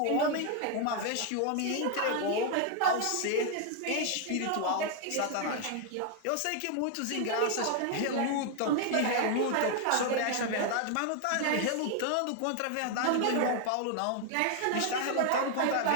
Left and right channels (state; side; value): different; both; correlation 0.00